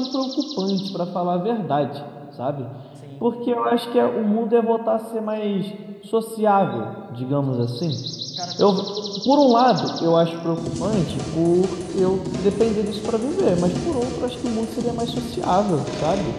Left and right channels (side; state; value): both; identical; correlation 1.00